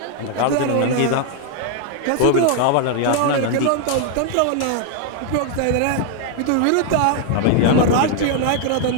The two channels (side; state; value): both; different; correlation 0.00